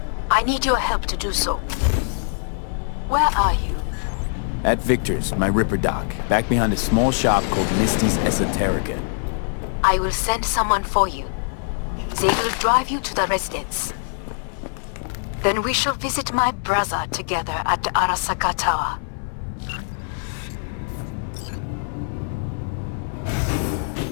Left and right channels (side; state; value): right; silent; digital silence